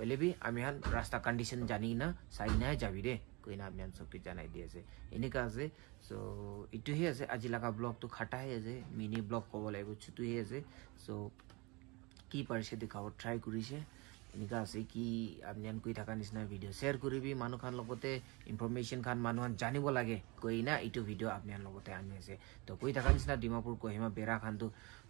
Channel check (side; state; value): left; quieter; 26.3 dB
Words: বি আমি হান রাস্তা কন্ডিশন জানি না চাই নাই যাবি রে কইনা আপনি সবকে জানাই দি আছে এনেকা আছে সো এইটোহে আছে আজি লাগা ব্লগ তো খাটাহে আছে মিনি ব্লগ কব লাগিব ছুটুহে আছে সো কি পাৰিছে দেখাব ট্ৰাই কৰিছে এনেকা আছে কি আপনি কই থাকা নিচিনা ভিডিও শেয়ার করিবি মানুহ খান লগতে ইনফরমেশন খান মানুহ জানিব লাগে কই না এইটো ভিডিও আপনার লগতে আনি আছে তো কই থাকা নিচিনা ডিমাপুর কোহিমা বেড়া খান তো